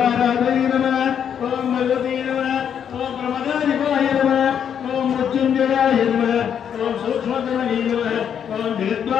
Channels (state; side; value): quieter; right; 8.4 dB